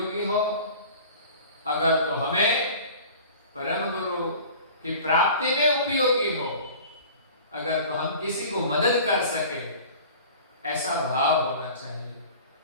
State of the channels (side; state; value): both; inverted; correlation -0.42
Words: हो। अगर तो हमें परम गुरु की प्राप्ति में उपयोगी हो, अगर तो हम किसी को मदद कर सके, ऐसा भाव होना चाहिए।